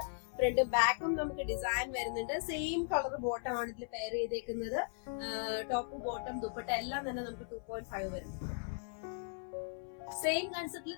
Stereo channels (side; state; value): right; silent; 53 dB below the other